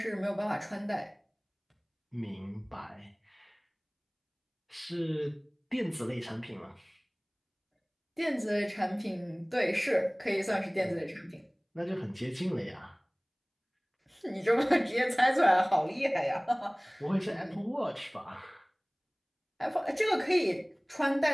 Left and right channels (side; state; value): both; identical; correlation 1.00